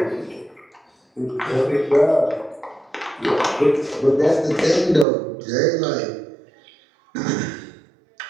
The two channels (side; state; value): left; drops out; at 5.1 s